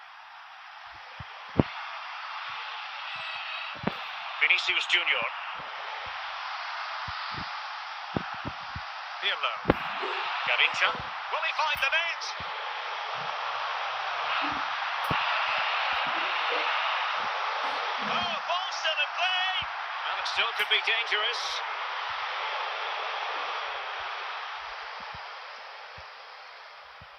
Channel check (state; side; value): identical; both; correlation 1.00